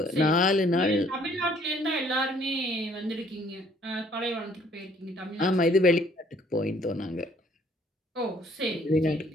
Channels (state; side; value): normal; both; correlation 0.61